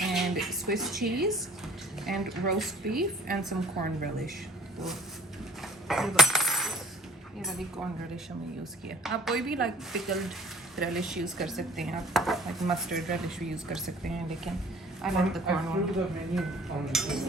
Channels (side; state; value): both; normal; correlation 0.52